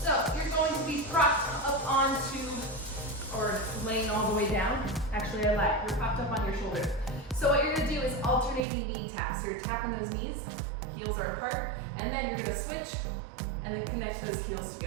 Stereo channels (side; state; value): left; drops out; at 8.6 s